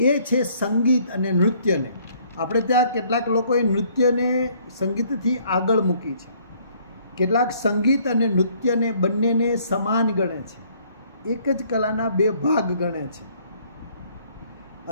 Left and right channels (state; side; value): inverted; both; correlation -0.62